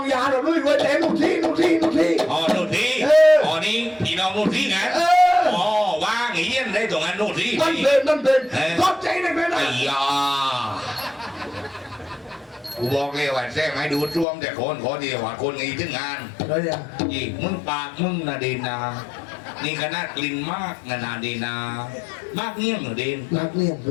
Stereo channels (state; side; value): drops out; right; at 14.2 s